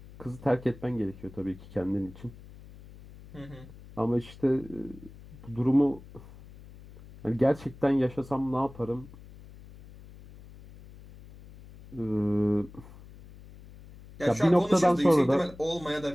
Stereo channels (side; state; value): left; noise; hum, 19 dB below the sound